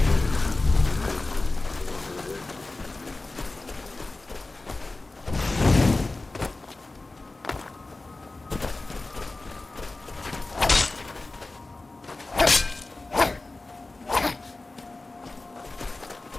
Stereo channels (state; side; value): quieter; right; 3.2 dB